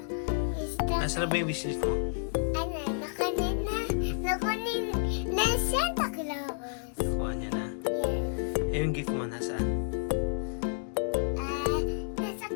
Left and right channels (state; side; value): silent; right; digital silence